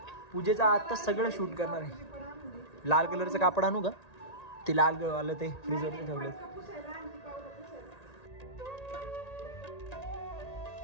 पूजेचा आता सगळं शूट करणार आहे. लाल कलरचं कापड आणू का, ते लाल आलं ते फ्रीजवरती ठेवलं.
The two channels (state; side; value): late; right; 1.8 ms